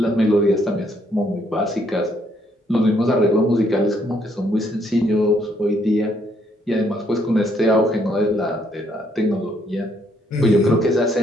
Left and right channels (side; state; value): both; normal; correlation 0.70